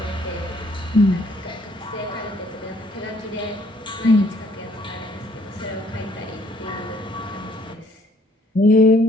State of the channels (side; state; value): both; normal; correlation 0.63